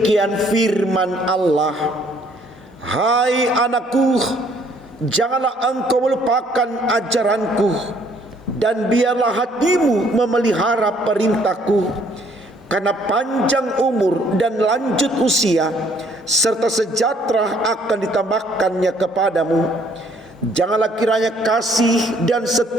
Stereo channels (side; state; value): both; normal; correlation 0.63